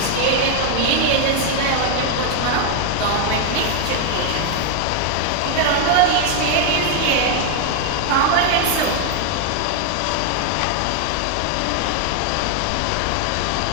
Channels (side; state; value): both; different; correlation 0.01